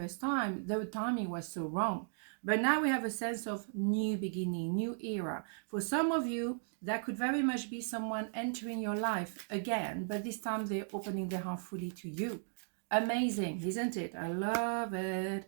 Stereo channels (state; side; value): silent; left; digital silence